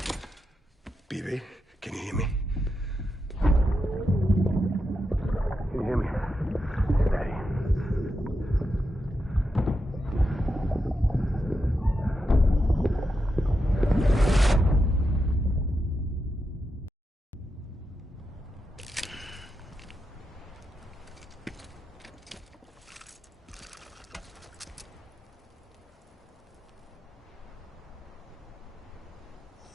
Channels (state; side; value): normal; both; correlation 0.86